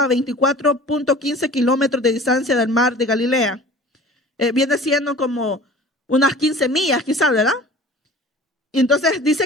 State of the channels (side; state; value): both; normal; correlation 0.43